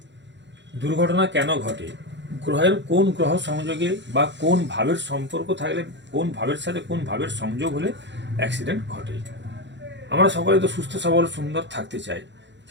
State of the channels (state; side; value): late; left; 0.52 ms